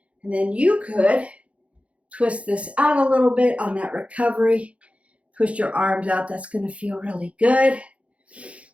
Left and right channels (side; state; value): left; late; 0.063 ms